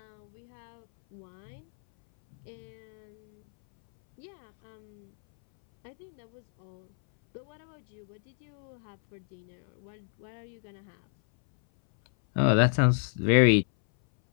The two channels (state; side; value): silent; right; 58 dB below the other